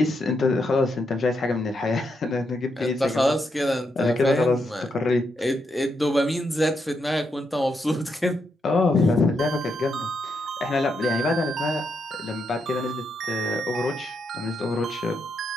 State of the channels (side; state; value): both; normal; correlation 0.81